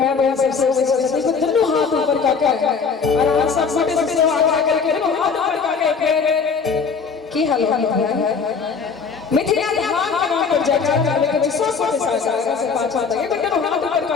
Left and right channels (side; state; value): right; quieter; 5.5 dB